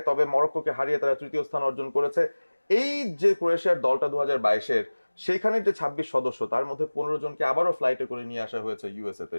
তবে মরক্কোকে হারিয়ে তারা তৃতীয় স্থান অর্জন করেছে। এই যে ক্রোয়েশিয়ার দলটা 2022-এর, সেইখানের যে 26 সদস্য, তার মধ্যে 15 জনকে আবারও ফ্লাইটে করে নিয়ে আসা হয়েছে ইউএসএ তে।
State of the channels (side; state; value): both; inverted; correlation -1.00